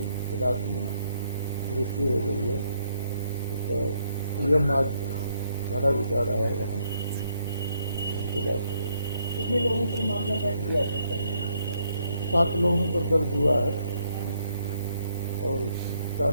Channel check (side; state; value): both; inverted; correlation -0.72